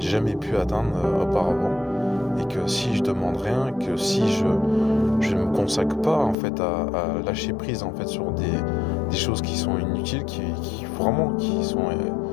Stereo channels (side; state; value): right; drops out; at 6.4 s